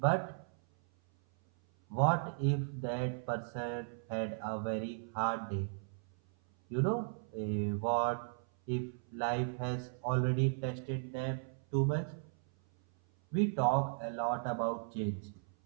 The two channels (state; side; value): silent; left; 54 dB below the other